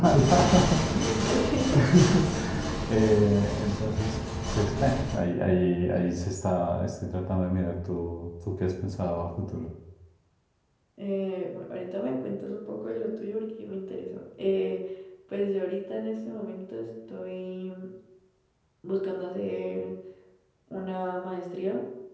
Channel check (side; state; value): both; identical; correlation 1.00